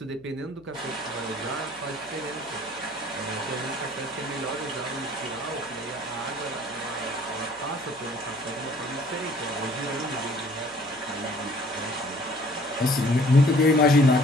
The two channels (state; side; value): noise; left; hum, 26 dB below the sound